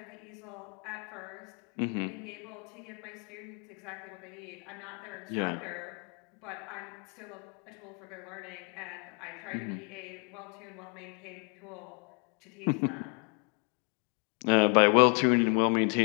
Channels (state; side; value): quieter; right; 37.5 dB